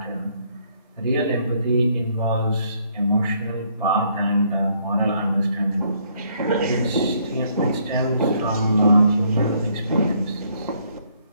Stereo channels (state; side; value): inverted; both; correlation -0.68